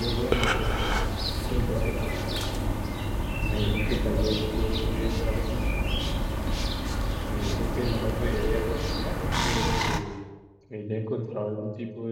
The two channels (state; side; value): identical; both; correlation 1.00